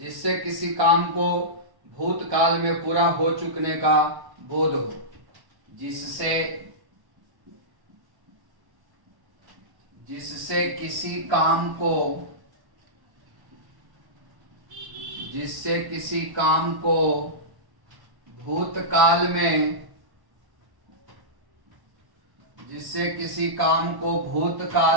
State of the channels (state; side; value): late; left; 1.1 ms